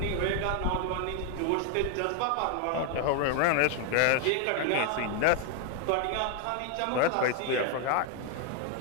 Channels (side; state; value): both; different; correlation 0.01